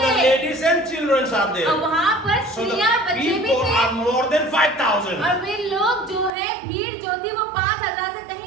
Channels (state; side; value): drops out; left; at 6.3 s